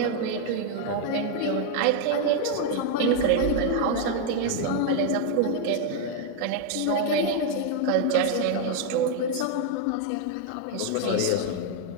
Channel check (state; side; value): different; both; correlation 0.01